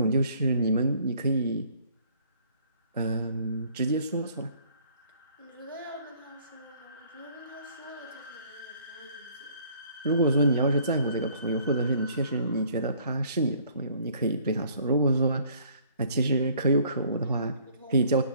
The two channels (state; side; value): inverted; both; correlation -0.59